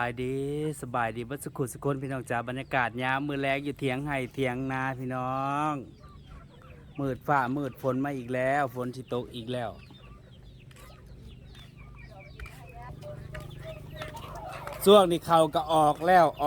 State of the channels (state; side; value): identical; both; correlation 1.00